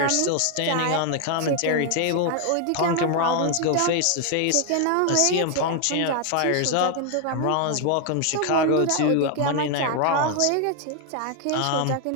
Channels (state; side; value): different; both; correlation 0.01